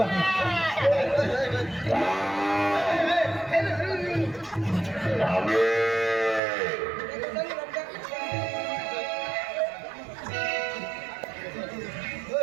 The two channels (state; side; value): drops out; left; at 6.4 s